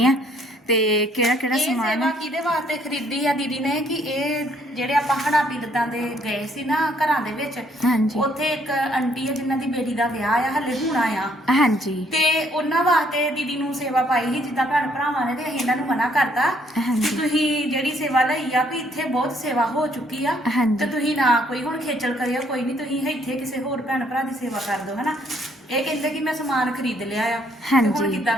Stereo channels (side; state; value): both; normal; correlation 0.66